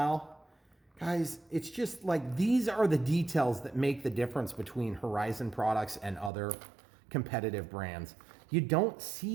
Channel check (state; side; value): drops out; left; at 6.3 s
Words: Guys, it's just like these are the details that make the difference between Horizon products and other competitive brands. You don't